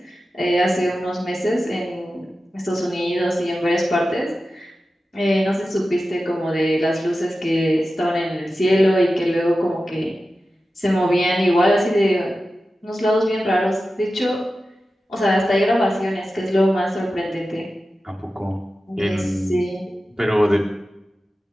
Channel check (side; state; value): both; normal; correlation 0.93